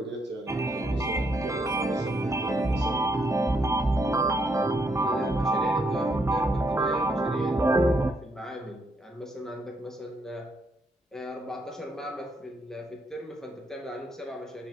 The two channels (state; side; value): normal; both; correlation 0.75